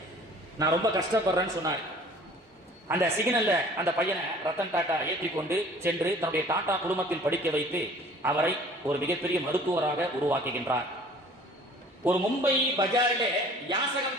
நான் ரொம்ப கஷ்டப்படுறேன்னு சொன்னார். அந்த சிக்னல்ல அந்த பையனை ரத்தன் டாடா ஏற்றிக்கொண்டு சென்று தன்னுடைய டாடா குடும்பத்தில் படிக்க வைத்து அவரை ஒரு மிகப்பெரிய மருத்துவராக உருவாக்குகின்றார். ஒரு மும்பை பஜாரிலே யாசகம்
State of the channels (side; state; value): both; normal; correlation 0.49